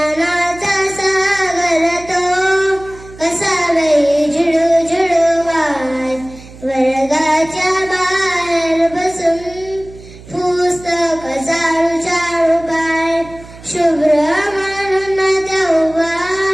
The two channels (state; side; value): noise; right; hum, 19 dB below the sound